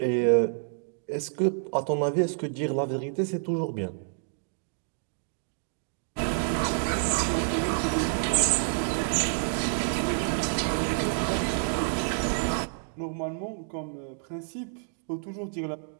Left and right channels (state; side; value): silent; left; digital silence